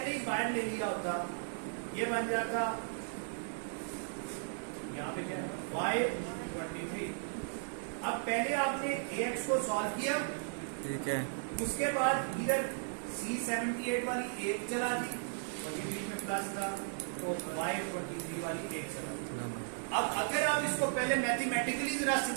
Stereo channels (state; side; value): silent; left; digital silence